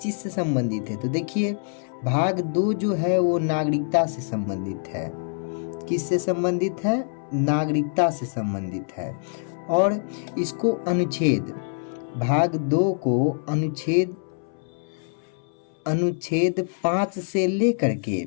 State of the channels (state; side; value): silent; right; 62 dB below the other